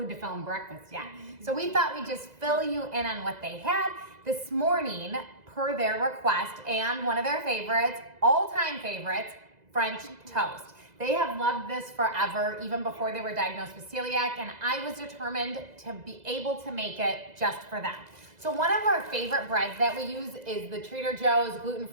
to film breakfast yet. So we thought we'd just fill you in on what they had this morning per their request and one of their favorites, all-time favorites, French toast. They have loved this forever, even before they were diagnosed with celiac, and I was determined to be able to make it just for them. So one of our favorite breads that we use is the Trader Joe's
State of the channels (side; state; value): left; late; 2.0 ms